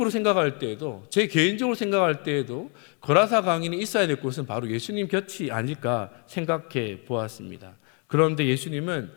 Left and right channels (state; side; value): quieter; right; 36.3 dB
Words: 생각할 때에도, 제 개인적으로 생각할 때에도 거라사 광인이 있어야 될 곳은 바로 예수님 곁이 아닐까 생각해 보았습니다. 그런데 예수님은